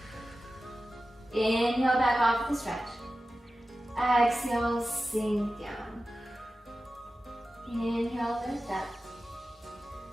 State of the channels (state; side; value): normal; both; correlation 0.94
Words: Inhale back off the stretch. Exhale, sink down. Inhale, lift up.